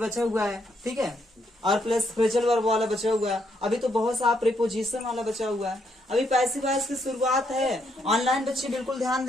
हुआ है, ठीक है, और प्लस फ्रेजल वर्ब वाला बचा हुआ है। अभी तो बहुत सा प्रीपोजिशन वाला बचा हुआ है। अभी पैसिव वॉइस की शुरुआत है। ऑनलाइन बच्चे बिल्कुल ध्यान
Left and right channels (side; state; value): both; normal; correlation 0.75